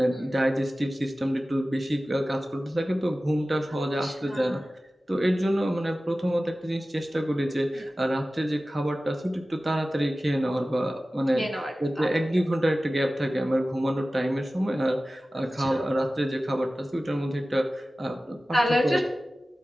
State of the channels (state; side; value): normal; both; correlation 0.96